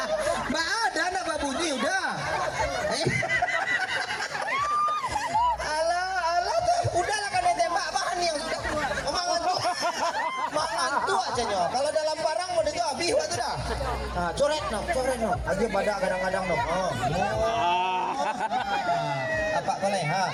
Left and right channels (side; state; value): both; identical; correlation 1.00